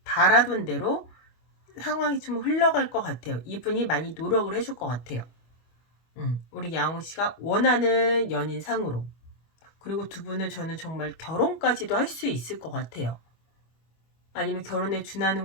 바라던 대로 상황이 좀 흘러갈 것 같아요. 이분이 많이 노력을 해줄 것 같아요. 우리 양호씨가 원하는 연인상으로. 그리고 두 분은 저는 정말 결혼까지도 할 수 있을 것 같아요. 아니면 결혼에 준하는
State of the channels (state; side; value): late; right; 25 ms